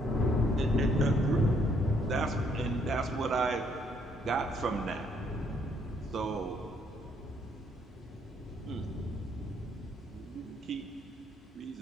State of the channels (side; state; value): both; normal; correlation 0.68